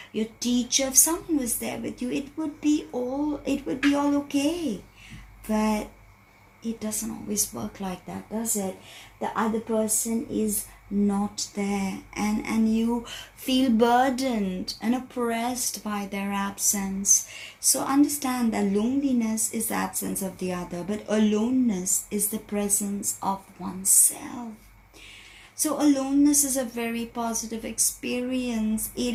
your teacher, if someone was there with you, it would be all okay. But it doesn't always work like that, does it? The other person is not there, and you feel burdened and oppressed by their absence. So understand that loneliness is the absence of the other, but aloneness is the presence of oneself. So aloneness is a very positive experience.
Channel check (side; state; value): both; identical; correlation 1.00